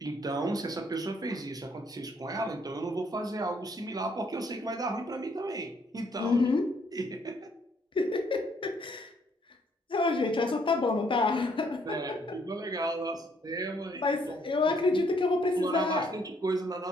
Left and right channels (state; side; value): normal; both; correlation 0.68